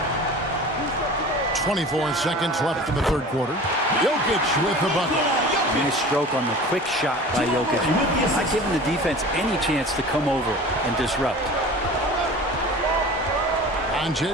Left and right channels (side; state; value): both; normal; correlation 0.39